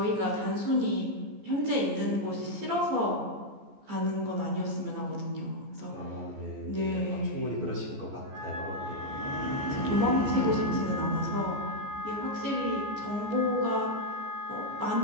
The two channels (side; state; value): left; late; 14 ms